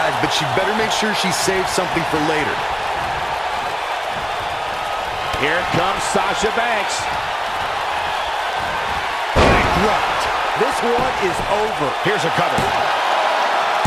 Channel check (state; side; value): identical; both; correlation 1.00